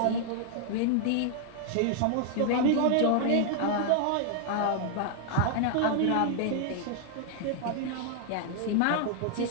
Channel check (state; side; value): different; both; correlation 0.00